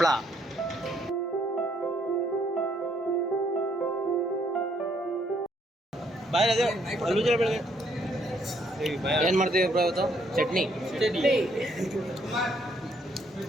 ಏನು ಮಾಡ್ತೀವಿ ಬ್ರೋ ಇವತ್ತು? ಚಟ್ನಿ.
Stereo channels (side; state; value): both; normal; correlation 0.70